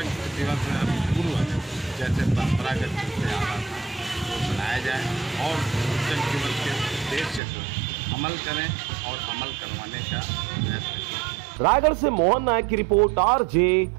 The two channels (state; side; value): drops out; left; at 7.4 s